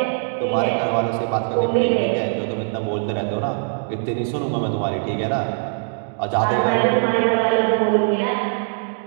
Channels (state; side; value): silent; left; digital silence